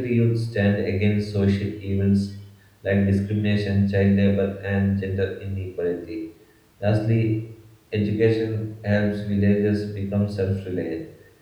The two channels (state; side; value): identical; both; correlation 1.00